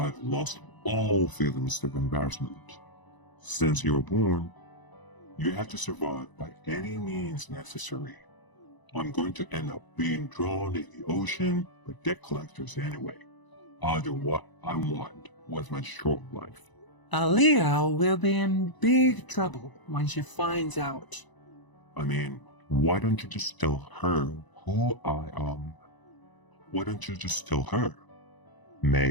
lost all feelings of embarrassment. Since you were born, you have to survive by any means necessary. I'm going to end up being drawn in the ocean by debt collectors anyway. I'll do what I want with my short life. Aaliyah will be in big trouble when she finds out. I mean, why don't you just tell her who I am? Why don't you just tell her?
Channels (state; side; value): late; right; 1.0 ms